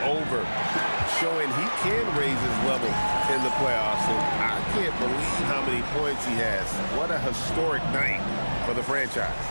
over, showing he can raise his level in the playoffs. And I can't believe how many points he has. What a historic night for the franchise.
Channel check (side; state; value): both; inverted; correlation -1.00